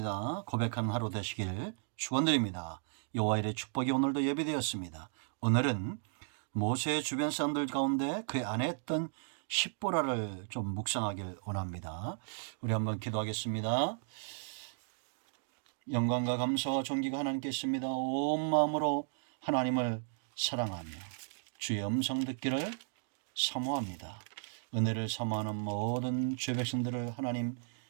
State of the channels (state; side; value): silent; left; digital silence